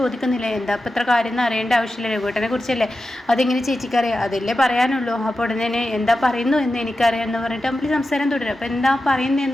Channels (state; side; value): normal; both; correlation 0.92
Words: എന്താ അപ്പം ഇത്ര കാര്യം എന്ന് അറിയേണ്ട ആവശ്യമില്ല, രഘുവേട്ടനെ കുറിച്ചല്ലേ, അതിങ്ങനെ ചേച്ചിക്കറിയാം, അതല്ലേ പറയാനുള്ളൂ. അപ്പോൾ ഉടനെ തന്നെ എന്താ പറയുന്നു എന്ന് എനിക്കറിയാം എന്ന് പറഞ്ഞിട്ട് അമ്പിളി സംസാരം തുടരും. അപ്പോൾ എന്താ പറയുന്നത്